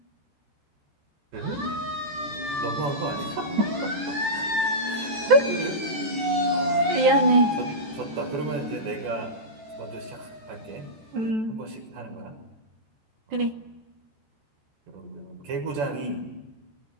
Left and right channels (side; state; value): left; late; 13 ms